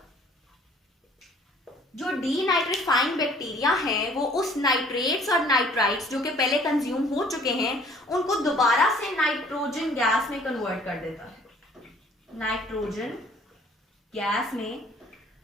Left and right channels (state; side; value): normal; both; correlation 0.56